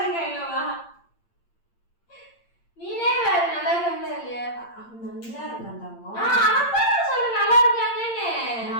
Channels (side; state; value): right; late; 8.7 ms